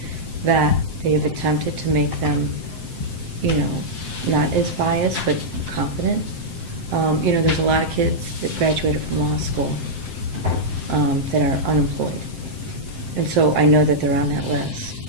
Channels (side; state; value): left; late; 7.7 ms